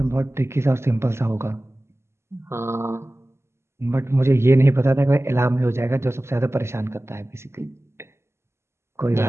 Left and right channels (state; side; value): late; left; 0.13 ms